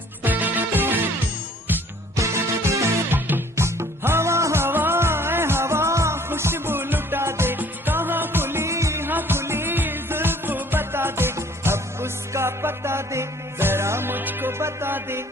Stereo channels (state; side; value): normal; both; correlation 0.56